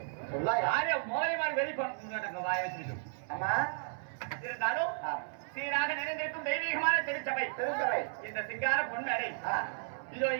யாரே மோகலிமார் வெளி பண்ண வாய வச்சுட்டு ஆமா இருந்தாலும் சீராக நிறைந்திருக்கும் தெய்வீகமான திருச்சபை இந்த சிங்கார பொன்மேடை இதோ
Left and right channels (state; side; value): silent; left; 55 dB below the other